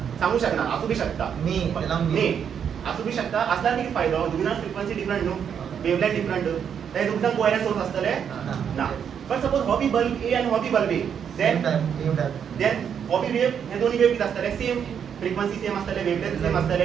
सांगू शकना असू बी शकता मी त्याला मे असू बी शकता असल्यार कितें फायदो दोगी जाण फ्रिक्वेन्सी डिफरंट न्हू वेवलेंथ डिफरंट ते दोगी जाण कोहेरंट सोर्स असतले ना बट सपोज हो बी बल्ब ए आणि हो B bulb A same time then हो बी वेव हे दोन्ही वेव किती असतले सेम फ्रिक्वेन्सी सेम असतले वेवलेंथ सेम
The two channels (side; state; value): left; quieter; 7.9 dB